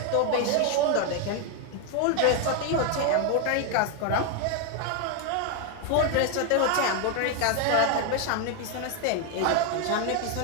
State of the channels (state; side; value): different; both; correlation 0.01